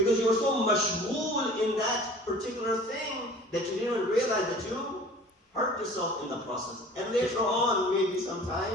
you were so mashghool in that particular thing that you didn't even realize that you hurt yourself in the process. And later on, maybe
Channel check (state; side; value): normal; both; correlation 0.45